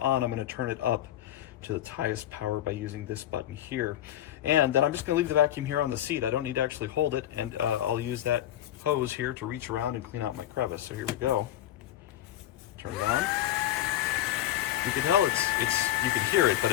I'm going to turn it up to its highest power by using this button here. And then I'm just going to leave the vacuum here on the seat. I don't need to actually hold it, and I'll use that hose here to reach around and clean out my crevice. So here we go. Turn it on. You can tell you can hear it, but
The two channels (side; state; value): right; quieter; 12.7 dB